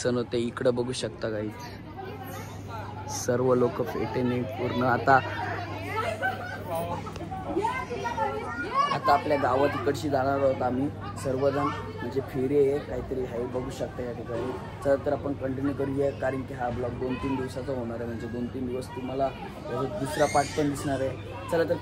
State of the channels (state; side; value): identical; both; correlation 1.00